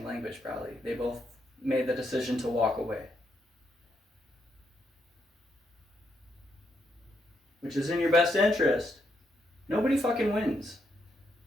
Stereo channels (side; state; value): both; normal; correlation 0.78